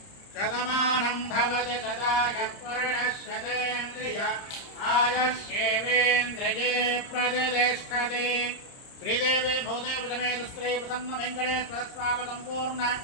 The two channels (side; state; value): right; late; 30 ms